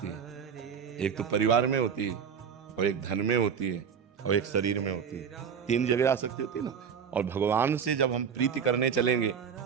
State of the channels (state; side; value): quieter; left; 7.1 dB